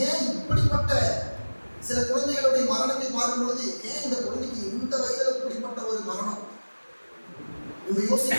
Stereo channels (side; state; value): both; inverted; correlation -1.00